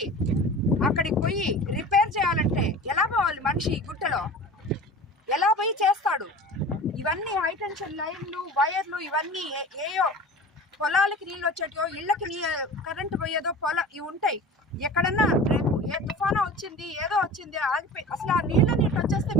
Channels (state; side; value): normal; both; correlation 0.37